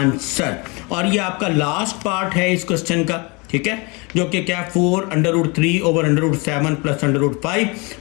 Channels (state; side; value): quieter; right; 28.7 dB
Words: और ये आपका लास्ट पार्ट है इस क्वेश्चन का, ठीक है, जो कि क्या 4 under root 3 over under root 7 plus under root